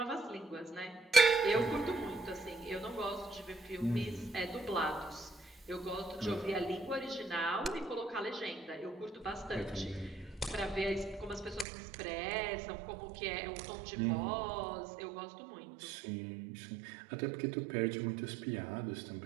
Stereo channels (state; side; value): drops out; left; at 11.7 s